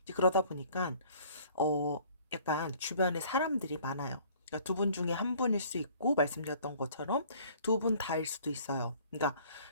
이제 그러다 보니까, 어 약간 주변에 사람들이 많아요. 그러니까 두 분 중에 한 분일 수 있고 말씀드렸던 것처럼 두 분 다일 수도 있어요. 그러니까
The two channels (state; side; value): inverted; both; correlation -0.54